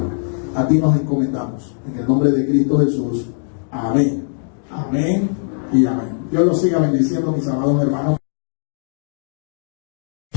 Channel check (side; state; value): right; silent; digital silence